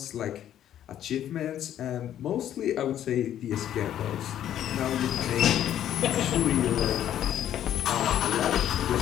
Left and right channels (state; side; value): quieter; right; 11.0 dB